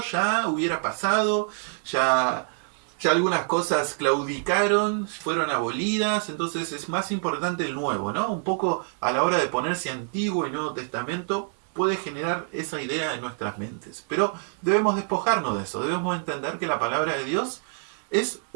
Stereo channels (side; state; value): left; silent; 61 dB below the other